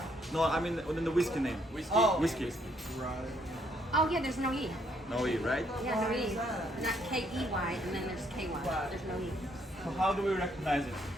No, I mean within the whiskey name. Whiskey. Whiskey. Oh yeah, there's no E. No E, right? Yeah, no E. Not K-E-Y, and then there's K-Y. There's no E. So how do we recognize it?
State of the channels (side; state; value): both; normal; correlation 0.70